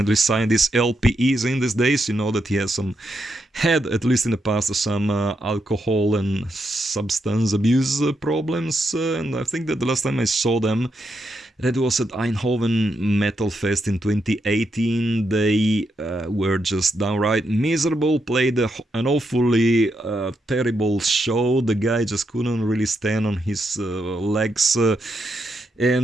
signed this LP, is in these days. You know that he has had, at least in the past, some alcohol and substance abuse problems. And I think that the last time I saw them, that was at Eindhoven Metal Fest in 2018. They were just downright miserable, played an awfully terrible show. The guy just couldn't really stand on his legs.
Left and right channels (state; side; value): normal; both; correlation 0.82